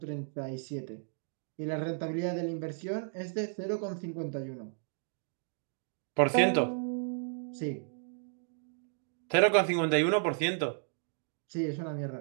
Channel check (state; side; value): silent; left; digital silence